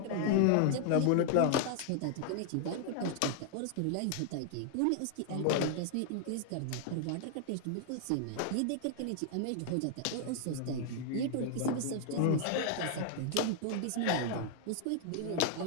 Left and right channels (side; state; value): both; different; correlation 0.00